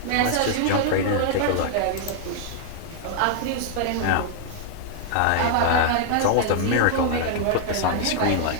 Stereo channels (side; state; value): both; different; correlation 0.00